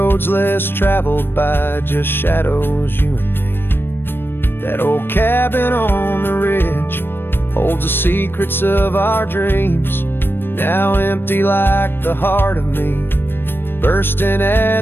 less traveled by, just shadows, you and me. That old cabin on the ridge holds the secrets of our dreams, now empty like the heart of me, bursting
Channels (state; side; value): late; right; 0.10 ms